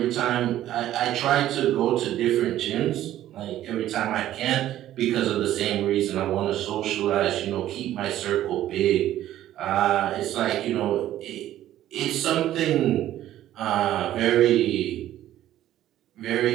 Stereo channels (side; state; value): left; quieter; 13.0 dB